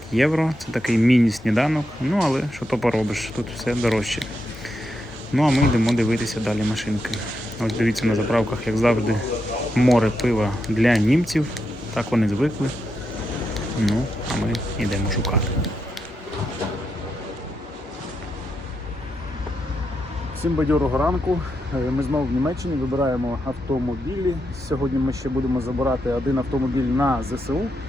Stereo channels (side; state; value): both; normal; correlation 0.84